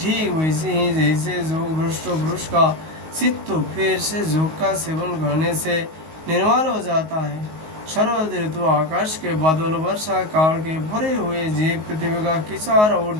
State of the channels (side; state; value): left; late; 19 ms